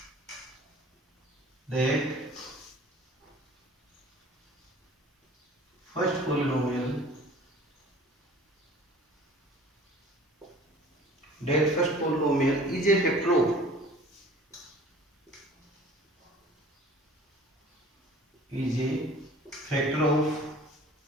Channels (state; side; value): normal; both; correlation 0.47